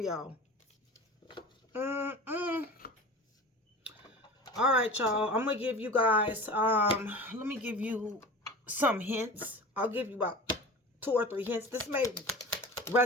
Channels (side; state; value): both; normal; correlation 0.36